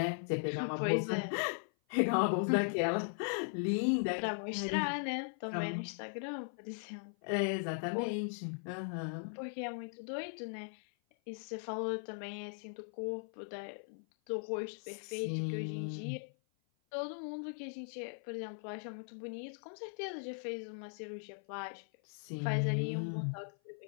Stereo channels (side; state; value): right; silent; 52 dB below the other